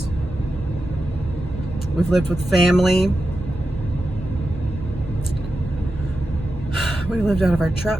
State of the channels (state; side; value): normal; both; correlation 0.90